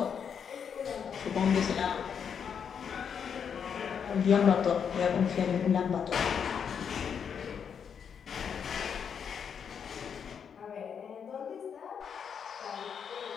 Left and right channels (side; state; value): right; quieter; 7.3 dB